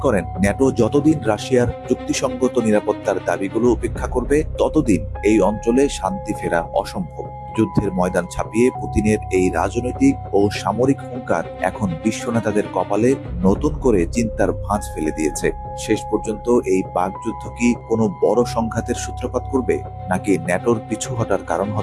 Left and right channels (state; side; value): identical; both; correlation 1.00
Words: করেন, ন্যাটো যতদিন রাশিয়ার যুক্তিসঙ্গত নিরাপত্তার দাবিগুলো উপেক্ষা করবে ততদিন এই অঞ্চলে শান্তি ফেরা অসম্ভব। যুদ্ধের ময়দান ছাপিয়ে পুতিনের এই রাজনৈতিক ও সামরিক হুঙ্কার এখন বিশ্ব নেতাদের কপালে নতুন করে চিন্তার ভাঁজ ফেলে দিয়েছে। শেষ পর্যন্ত এই বাকযুদ্ধ কি কোনো বড় সংঘাতের সূত্রপাত করবে, নাকি ন্যাটোর পিছু হটার কারণ